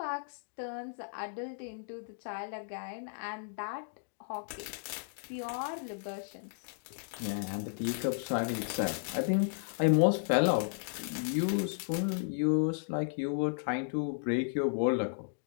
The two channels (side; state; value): right; silent; digital silence